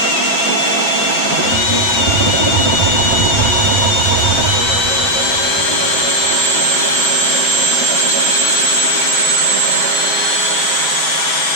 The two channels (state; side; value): late; right; 6.9 ms